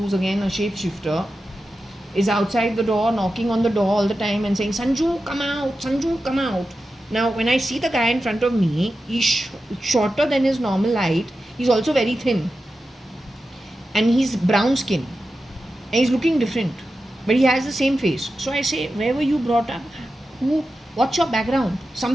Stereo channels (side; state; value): both; normal; correlation 0.91